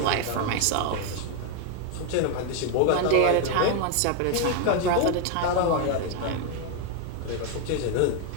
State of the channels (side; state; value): both; different; correlation 0.01